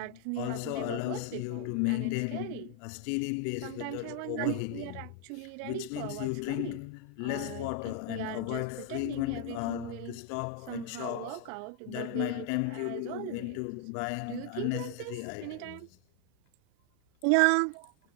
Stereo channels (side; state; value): both; different; correlation 0.00